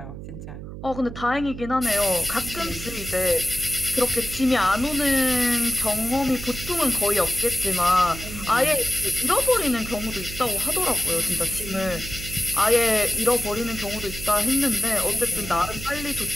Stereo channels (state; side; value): noise; right; hum, 11 dB below the sound